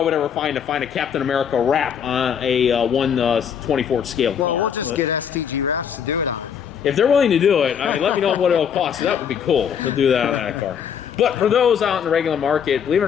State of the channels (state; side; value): quieter; right; 7.8 dB